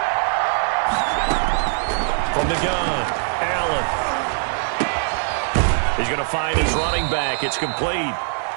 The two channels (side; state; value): left; silent; digital silence